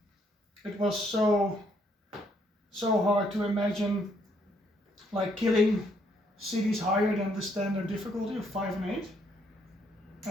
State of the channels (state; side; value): normal; both; correlation 0.70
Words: it was so hard to imagine like killing cities higher than the standard difficulty of 5 and 8.